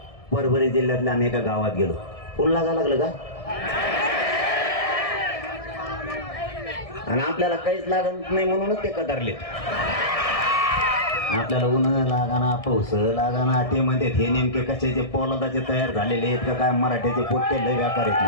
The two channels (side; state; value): right; late; 1.7 ms